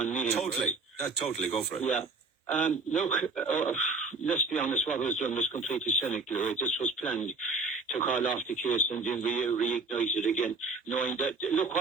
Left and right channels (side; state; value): left; quieter; 3.7 dB